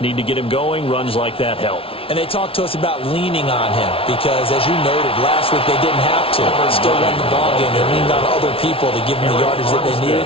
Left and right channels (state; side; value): late; right; 0.26 ms